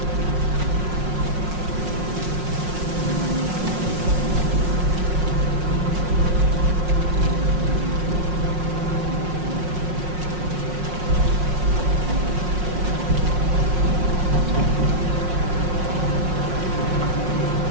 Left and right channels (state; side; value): late; left; 5.5 ms